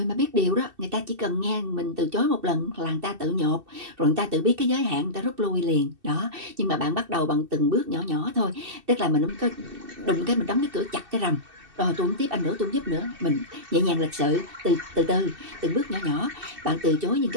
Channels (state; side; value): late; left; 2.6 ms